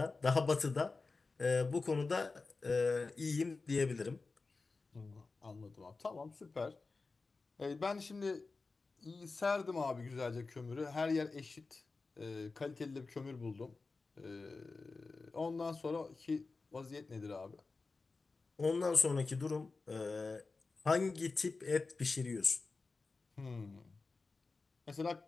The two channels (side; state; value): right; quieter; 3.9 dB